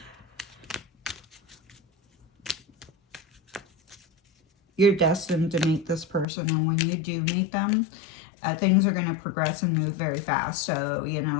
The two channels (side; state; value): right; drops out; at 6.2 s